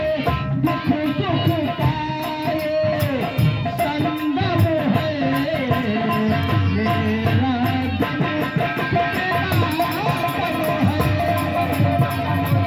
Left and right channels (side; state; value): both; identical; correlation 1.00